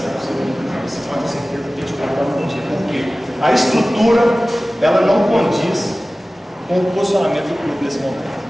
segunda divisão. Você pode ter certeza que a gente vai estar no dia. Porque a estrutura, ela não condiz com o posicionamento do clube nesse momento.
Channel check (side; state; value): both; normal; correlation 0.97